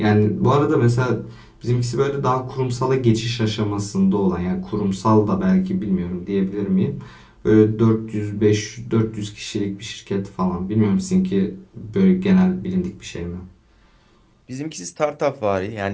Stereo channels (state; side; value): identical; both; correlation 1.00